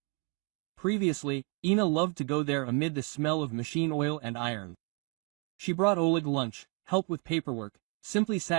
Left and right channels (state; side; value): quieter; left; 32.2 dB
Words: Previously, Inna loved to go there amid the smell of machine oil and iron. She brought Oleg lunch, helped with paperwork, simply